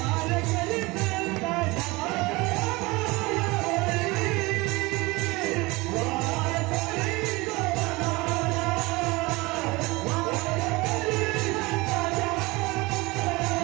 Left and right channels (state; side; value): quieter; left; 23.0 dB